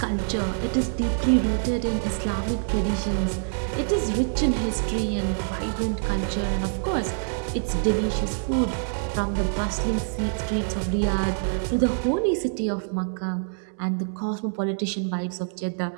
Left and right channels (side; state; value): left; silent; digital silence